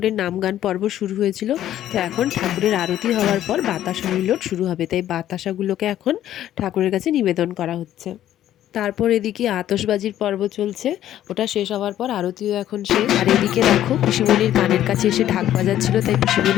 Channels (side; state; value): right; quieter; 12.1 dB